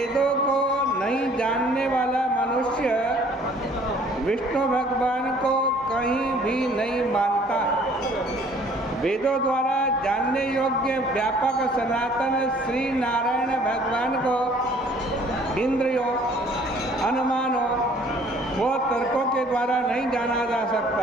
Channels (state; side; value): normal; both; correlation 0.56